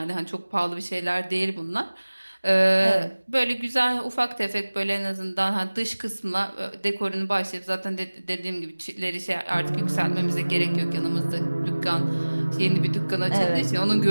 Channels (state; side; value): inverted; both; correlation -1.00